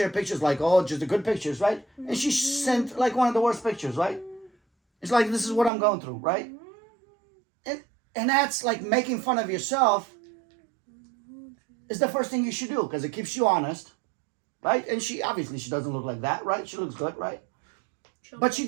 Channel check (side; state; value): left; drops out; at 5.7 s